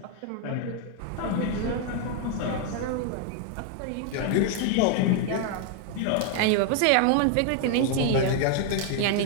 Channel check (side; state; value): both; different; correlation 0.00